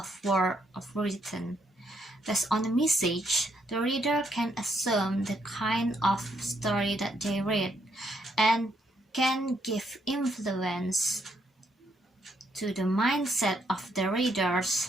written. Based on the message, the reader can assume the kind of story that they read and can give influence to the mindset of the readers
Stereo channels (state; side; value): normal; both; correlation 0.74